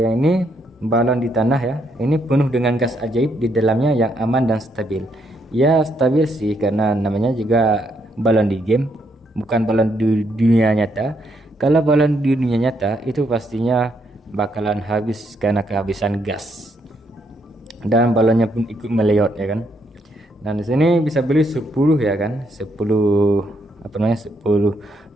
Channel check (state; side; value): normal; both; correlation 0.75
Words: ini balon di tanah ya, ini penuh dengan gas ajaib di dalamnya yang aman dan stabil. Ya stabil sih karena namanya juga balon di game, bukan balon di dunia nyata. Kalau balon di dunia nyata itu pastinya bakalan habis karena kehabisan gas, dan balonnya pun ikut meleot ya kan. Dan di sini bisa beli 10 ya kan, 10